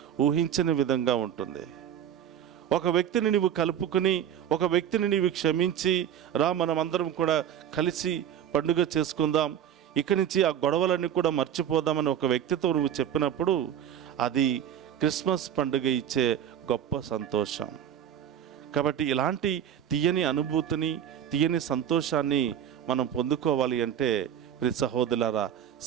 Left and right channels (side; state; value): left; quieter; 9.9 dB